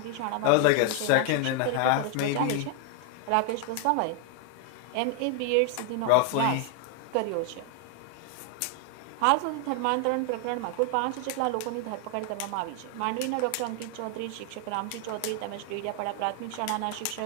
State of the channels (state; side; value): different; both; correlation 0.00